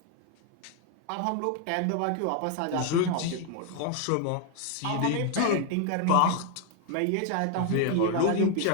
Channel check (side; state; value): both; different; correlation 0.01